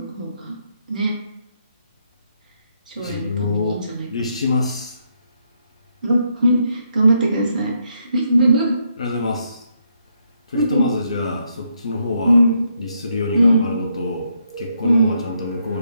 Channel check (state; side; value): inverted; both; correlation -0.76